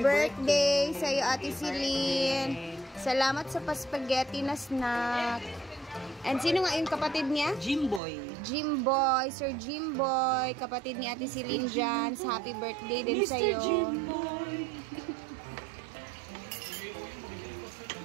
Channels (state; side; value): drops out; left; at 8.0 s